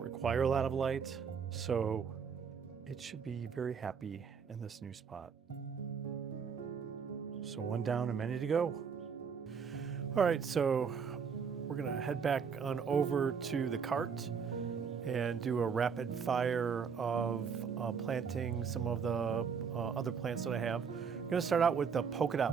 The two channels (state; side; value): quieter; left; 6.4 dB